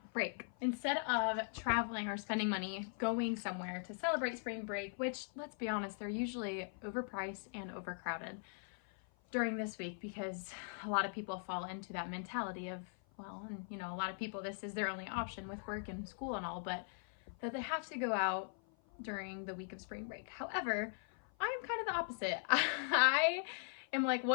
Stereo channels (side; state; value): right; silent; 51 dB below the other